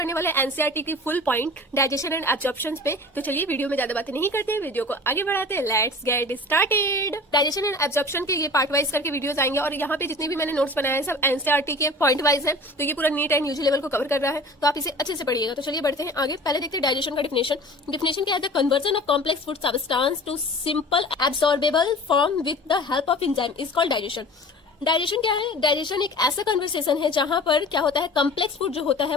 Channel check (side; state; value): both; normal; correlation 0.40